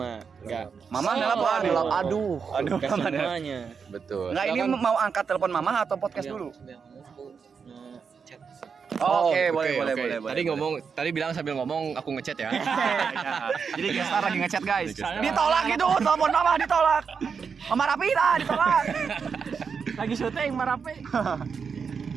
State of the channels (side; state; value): left; quieter; 6.0 dB